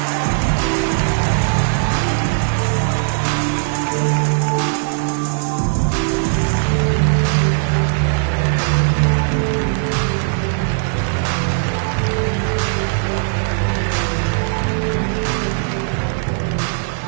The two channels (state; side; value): silent; left; 61 dB below the other